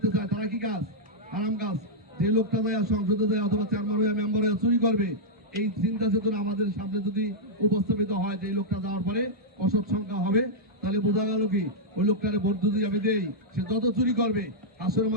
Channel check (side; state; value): both; normal; correlation -0.07